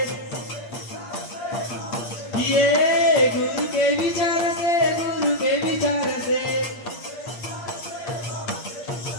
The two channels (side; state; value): right; late; 8.6 ms